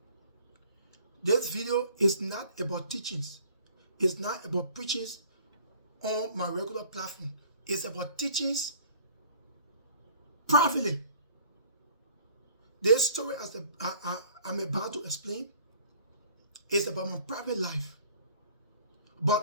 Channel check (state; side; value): inverted; both; correlation -0.53